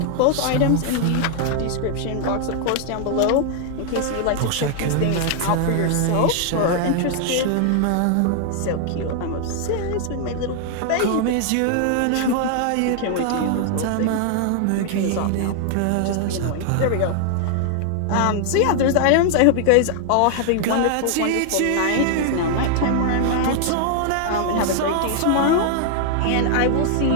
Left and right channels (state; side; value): different; both; correlation 0.00